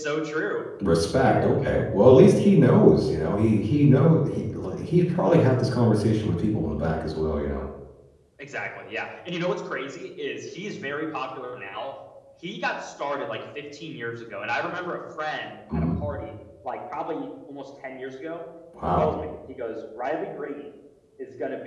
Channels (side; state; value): both; identical; correlation 1.00